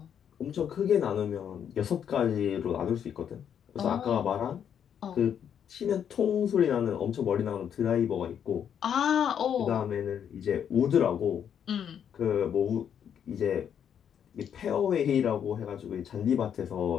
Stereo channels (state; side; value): quieter; right; 8.6 dB